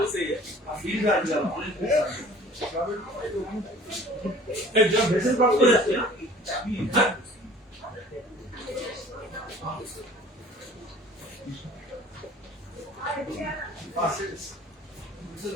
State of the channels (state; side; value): normal; both; correlation 0.48